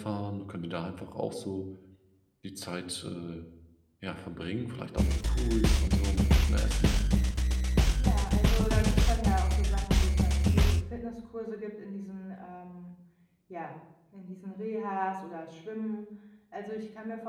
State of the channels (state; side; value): identical; both; correlation 1.00